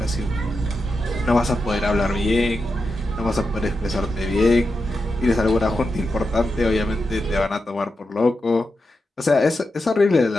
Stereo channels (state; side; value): normal; both; correlation 0.88